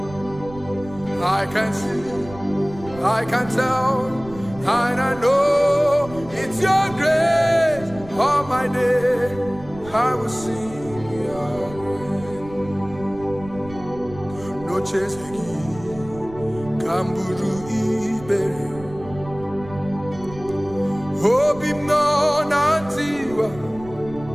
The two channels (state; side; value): noise; right; rumble, 17 dB below the sound